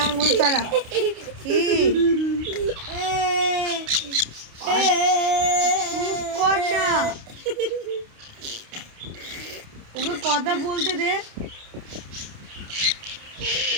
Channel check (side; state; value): left; late; 29 ms